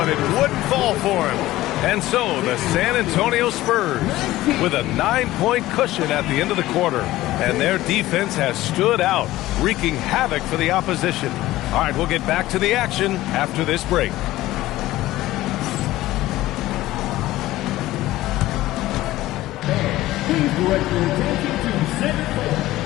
it wouldn't fall for him. And so the San Antonio Spurs with a 9-point cushion at the end of the quarter. And their defense has stood out, wreaking havoc for the opposition. All right, we'll get back to the action after this break. Please direct your attention to center court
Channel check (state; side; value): quieter; right; 16.4 dB